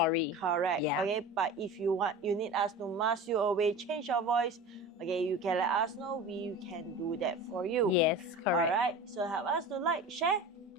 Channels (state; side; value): normal; both; correlation 0.34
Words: Correct. Yeah. Okay. But if you need us to mask you away, change your voice, okay, you can let us know. We can do that for you. Yes, correct. Alright. So help us to like, share,